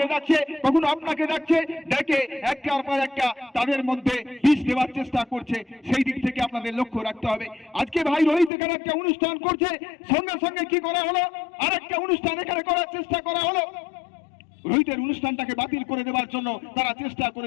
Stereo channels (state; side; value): drops out; right; at 8.5 s